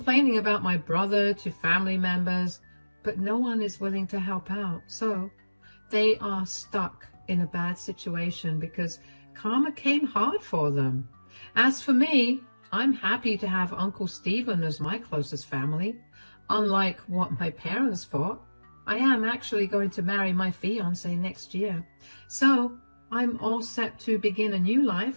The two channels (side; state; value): both; inverted; correlation -1.00